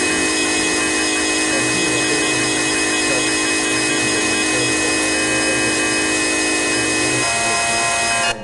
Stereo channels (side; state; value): both; identical; correlation 1.00